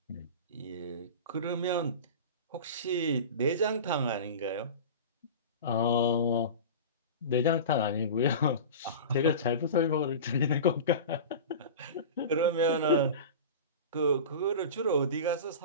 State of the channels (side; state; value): both; inverted; correlation -0.31